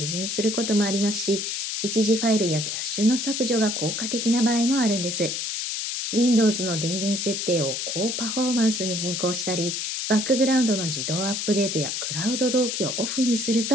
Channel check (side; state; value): left; noise; hiss, 2 dB below the sound